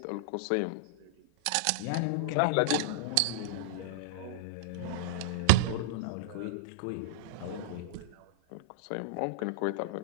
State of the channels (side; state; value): both; different; correlation -0.02